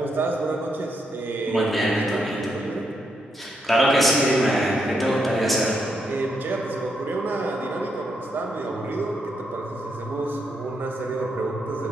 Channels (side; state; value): both; normal; correlation 0.79